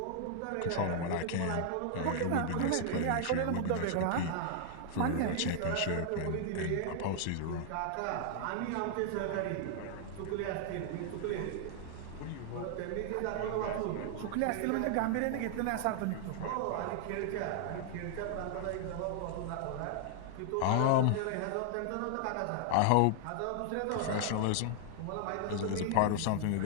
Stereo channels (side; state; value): both; different; correlation -0.01